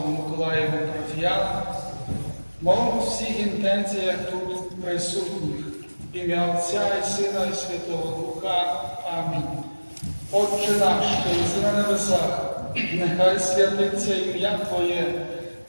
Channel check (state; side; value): inverted; both; correlation -1.00